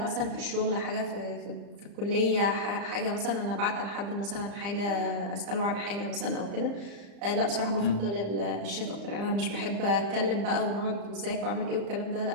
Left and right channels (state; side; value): late; left; 35 ms